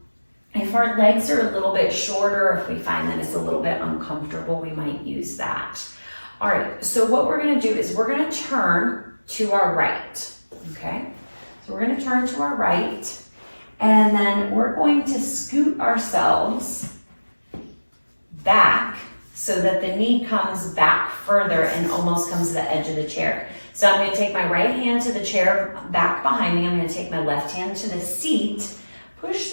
If our legs are a little bit shorter, if we find that it's a little bit uncomfortable, we might use that. All right, so what we're gonna do is we're gonna turn to our right, okay? So we're gonna turn to our right, and then we're going to scoot ourselves back so that the knee comes back further and almost comes to the edge of the chair. So I'm gonna take my right hand to the chair back behind me. I'm gonna take my left hand to the seat, push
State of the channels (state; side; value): inverted; both; correlation -1.00